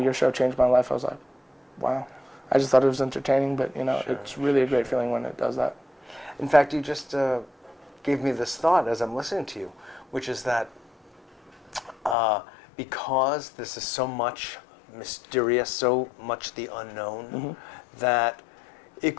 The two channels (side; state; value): right; drops out; at 12.2 s